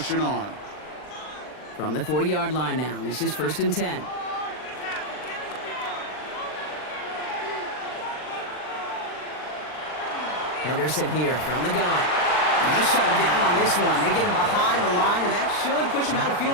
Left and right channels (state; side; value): late; right; 39 ms